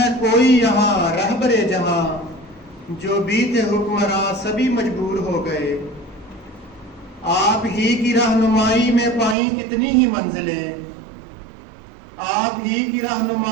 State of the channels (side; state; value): left; drops out; at 9.3 s